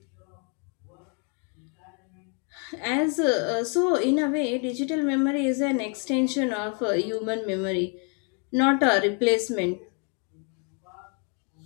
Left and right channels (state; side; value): quieter; right; 38.3 dB